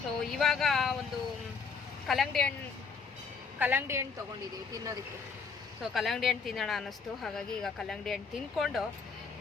ಸೊ ಇವಾಗ ಒಂದು ಕಲ್ಲಂಗಡಿ ಹಣ್ಣು ತೊಗೊಂಡಿದ್ದೀವಿ ತಿನ್ನೋದಕ್ಕೆ. ಸೊ ಕಲ್ಲಂಗಡಿ ಹಣ್ಣು ತಿನ್ನೋಣ ಅನ್ನಿಸ್ತು, ಹಾಗಾಗಿ ಈಗ ಕಲ್ಲಂಗಡಿ ಹಣ್ಣು ತಿಂದ್ಕೊಂಡು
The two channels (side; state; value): right; quieter; 5.3 dB